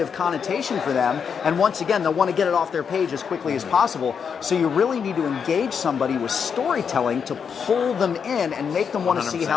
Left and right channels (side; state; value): right; quieter; 6.7 dB